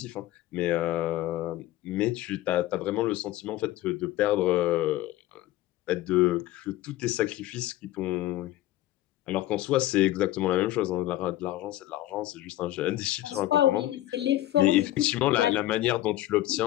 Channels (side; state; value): right; quieter; 15.3 dB